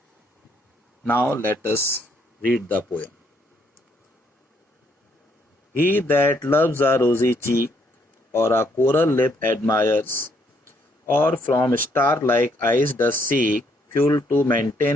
Now let us read the poem. He that loves a rosy cheek or a coral lip admires, or from star-like eyes does seek fuel to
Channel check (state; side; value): normal; both; correlation 0.71